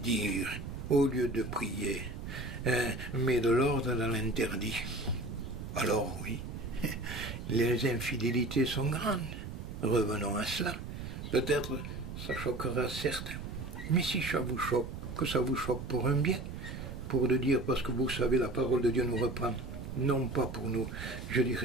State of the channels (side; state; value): right; noise; rumble, 8 dB below the sound